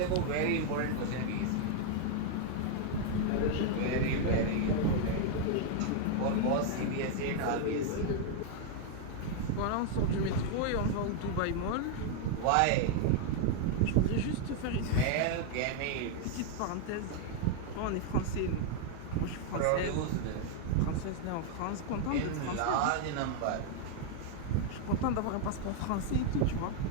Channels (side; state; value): both; different; correlation 0.00